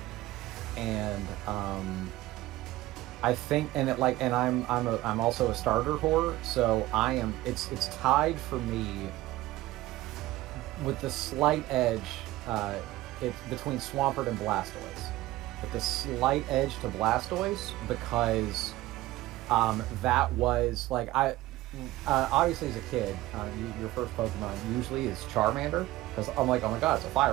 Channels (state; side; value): quieter; left; 17.0 dB